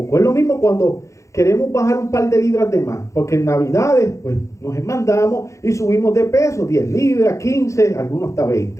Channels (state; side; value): late; right; 0.15 ms